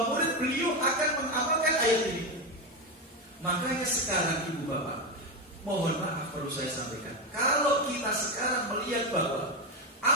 murid beliau akan mengamalkan ayat ini. Makanya sekarang ibu bapak, mohon maaf perlu saya sampaikan, kalau kita sekarang melihat bahwa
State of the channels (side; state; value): both; normal; correlation 0.12